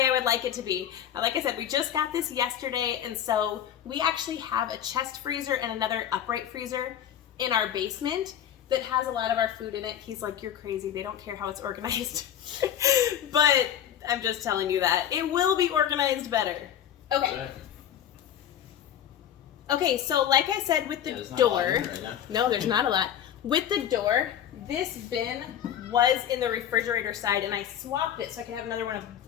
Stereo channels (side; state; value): right; quieter; 10.1 dB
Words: I would like it to be. Like I said, we just got this yesterday, and so we actually have a chest freezer and another upright freezer in our basement that has a lot of our food in it. He's like, you're crazy. They don't care how it's organized. But I'm just telling you that. It will be organized better. Okay. Okay, so like I said with the door, no, there's not a lot. With the door, this bin was in the refrigerator side and I swapped it so I could have another one of